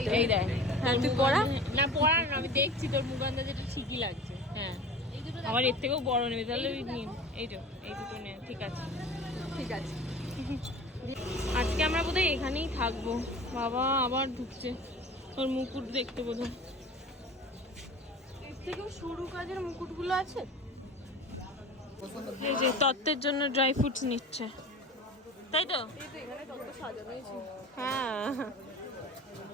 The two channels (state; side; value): normal; both; correlation 0.38